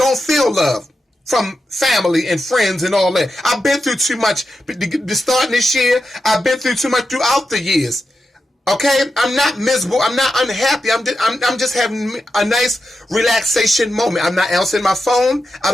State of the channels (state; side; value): normal; both; correlation 0.89